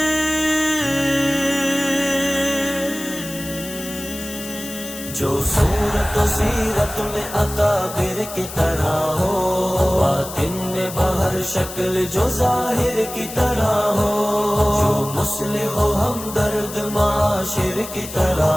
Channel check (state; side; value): noise; left; hiss, 11 dB below the sound